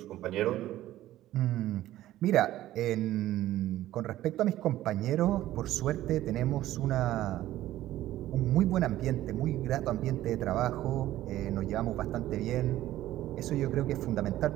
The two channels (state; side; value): quieter; left; 14.4 dB